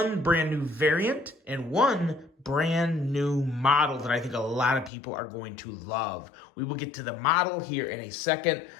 brand new variant and one brand new model that I think a lot of people are going to love. We will get to the model here in a second.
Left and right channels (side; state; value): right; drops out; at 4.9 s